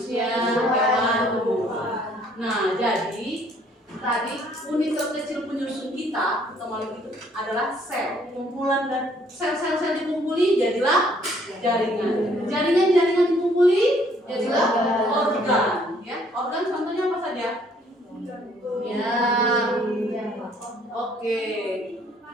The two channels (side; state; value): both; normal; correlation 0.63